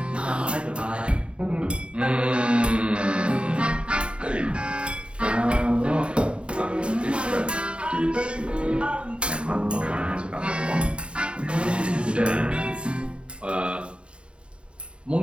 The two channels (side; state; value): left; late; 0.055 ms